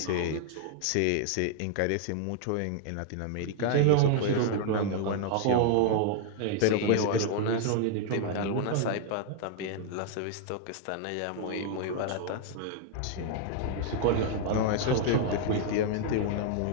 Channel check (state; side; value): different; both; correlation 0.00